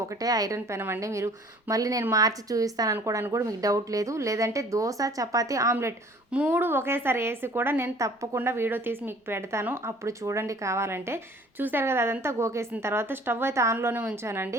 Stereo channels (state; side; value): normal; both; correlation 0.52